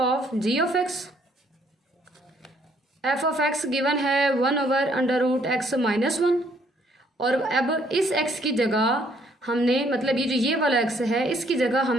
g of x. F of x given है 1/√x - 1 और अब इस x की जगह हमने मतलब ये जो ये वाला x है इसकी जगह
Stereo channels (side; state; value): both; normal; correlation 0.66